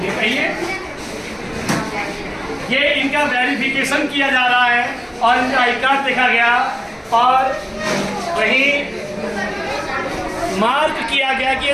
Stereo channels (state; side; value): identical; both; correlation 1.00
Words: ये इनका वेरिफिकेशन किया जा रहा है और इनका आई कार्ड देखा गया और वही मार्क किया गया कि ये